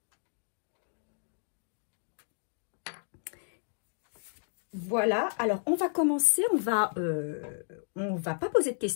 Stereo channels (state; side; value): silent; right; digital silence